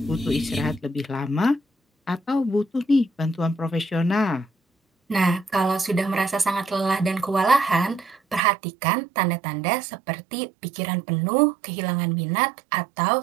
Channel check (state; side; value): drops out; left; at 8.4 s